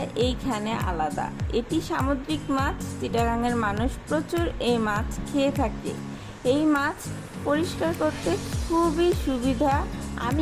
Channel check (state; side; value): identical; both; correlation 1.00